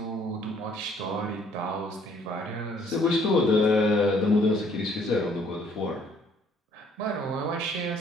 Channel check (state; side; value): normal; both; correlation 0.62